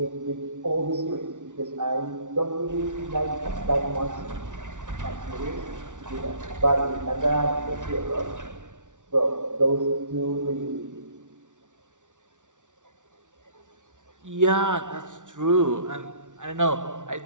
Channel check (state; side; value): late; left; 0.87 ms